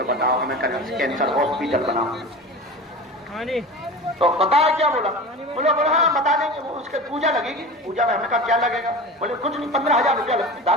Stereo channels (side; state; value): both; normal; correlation 0.32